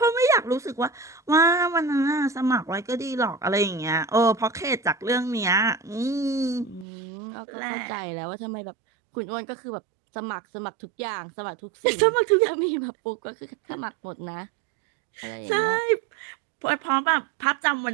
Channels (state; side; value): drops out; left; at 6.9 s